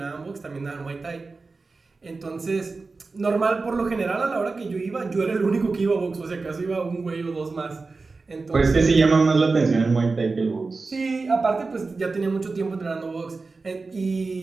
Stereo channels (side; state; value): left; quieter; 3.9 dB